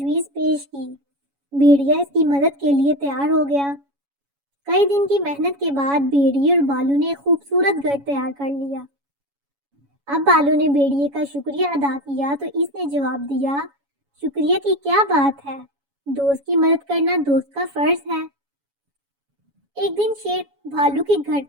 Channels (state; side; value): late; left; 7.1 ms